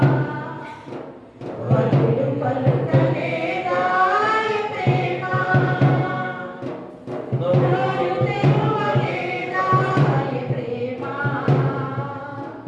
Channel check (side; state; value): both; identical; correlation 1.00